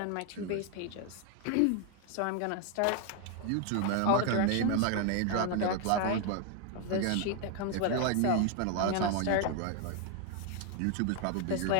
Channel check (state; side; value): different; both; correlation 0.01